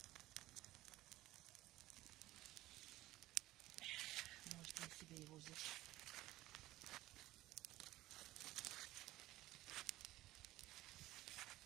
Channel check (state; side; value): quieter; left; 16.6 dB